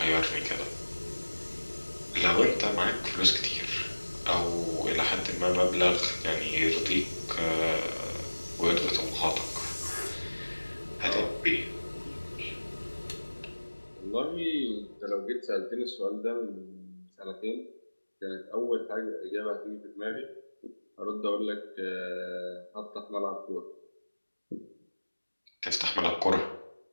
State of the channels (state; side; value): inverted; both; correlation -1.00